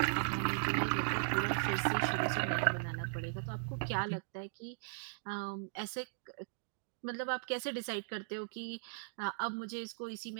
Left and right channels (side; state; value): left; silent; digital silence